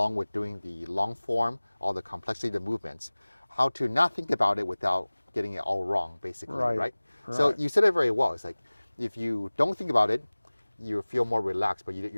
with doing the long form, all the complexity of the movements. How to not think about it without getting it all wrong, basically, right? So you said it very well. It's like, if you don't think about it, you feel more relaxed, but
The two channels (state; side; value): inverted; both; correlation -1.00